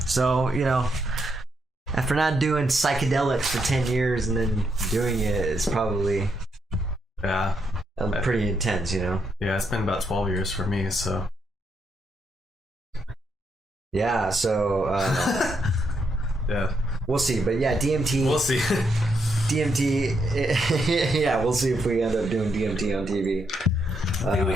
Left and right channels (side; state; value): both; normal; correlation 0.78